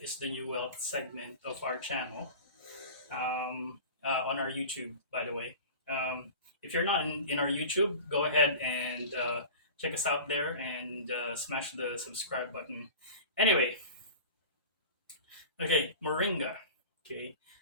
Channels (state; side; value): inverted; both; correlation -0.36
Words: is the new wealth segment of our channel on our YouTube, by the way. If you're not in our YouTube, go ahead and check us out there and smash the subscribe button. Anyway, okay, Moringa. Okay,